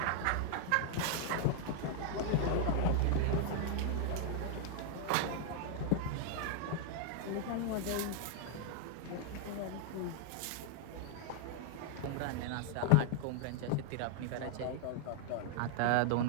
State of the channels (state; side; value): different; both; correlation 0.00